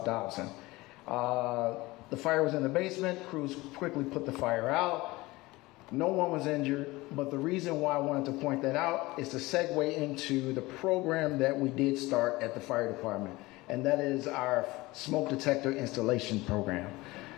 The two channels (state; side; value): quieter; right; 20.7 dB